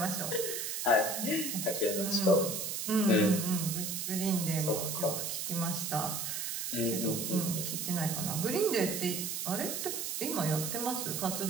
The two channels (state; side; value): noise; right; hiss, 3 dB below the sound